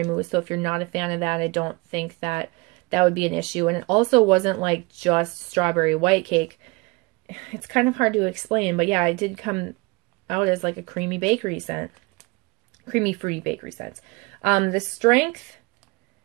mousse, so if you're not a fan of that, I don't think that would be an issue. And it also wasn't like just strawberry white cake. It's kind of hard to explain, but yeah, it did come out as like a creamy bakery scent. Creamy, fruity bakery scent. The strength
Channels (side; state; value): left; quieter; 25.6 dB